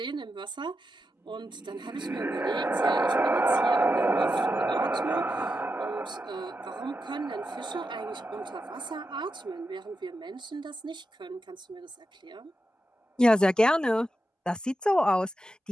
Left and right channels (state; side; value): normal; both; correlation 0.88